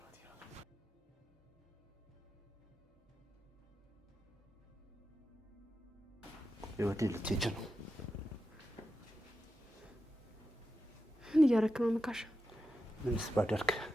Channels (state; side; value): normal; both; correlation 0.89